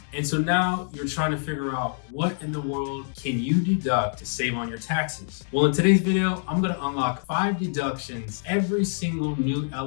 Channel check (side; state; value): right; silent; digital silence